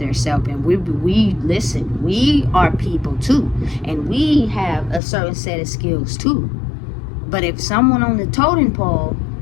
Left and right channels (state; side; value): drops out; right; at 5.0 s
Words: And we listen, we are people too. And we have a certain set of skills too. But if someone on the totem pole